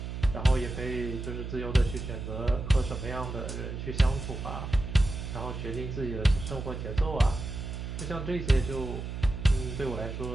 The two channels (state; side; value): noise; right; hum, 6 dB below the sound